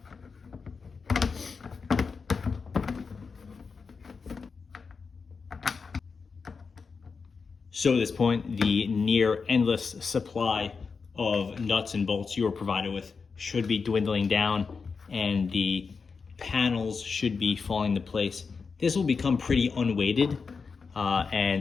So at this point, the near endless supply of nuts and bolts you are provided with should be dwindling down, and the panels should be falling into place. This will become pretty unweighted,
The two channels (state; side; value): quieter; right; 5.1 dB